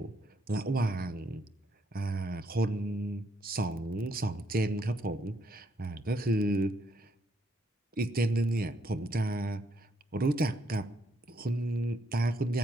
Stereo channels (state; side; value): normal; both; correlation 0.73